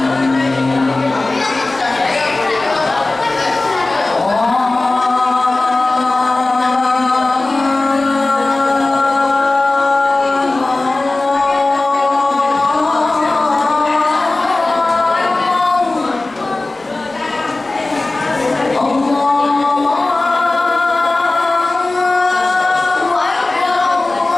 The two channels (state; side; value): quieter; right; 3.1 dB